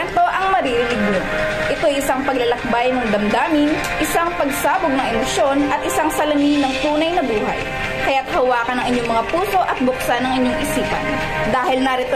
ang maririnig nyo. Ito ay isang paglalakbay ng damdamin, isang pagsabog ng emosyon at isang salamin ng tunay na buhay. Kaya't hawakan ang inyong mga puso at buksan ang inyong isipan. Dahil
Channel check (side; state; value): both; identical; correlation 1.00